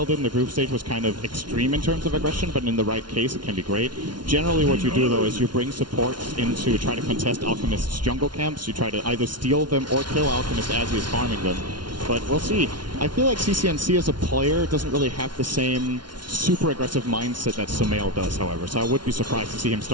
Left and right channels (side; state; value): left; late; 0.70 ms